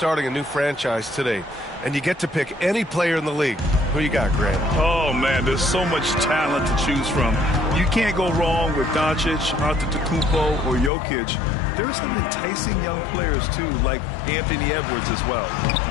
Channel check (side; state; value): right; drops out; at 10.9 s